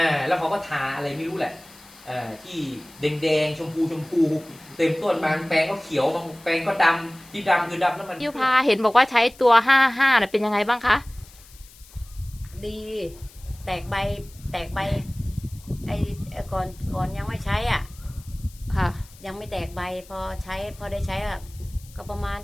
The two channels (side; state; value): left; noise; hiss, 23 dB below the sound